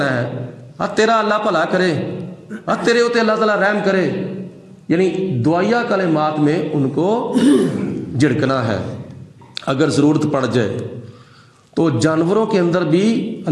ہے تیرا اللہ بھلا کرے، تیرے ہوتے اللہ تعالیٰ رحم کرے، یعنی دعائیہ کلمات میں ان کو جھڑکنا ہے۔ اگر ضرورت پڑ جائے تو جانوروں کے اندر بھی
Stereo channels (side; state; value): both; identical; correlation 1.00